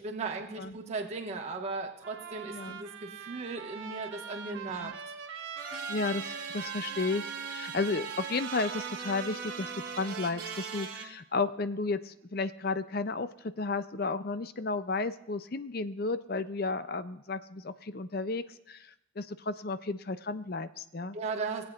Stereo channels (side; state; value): both; normal; correlation 0.06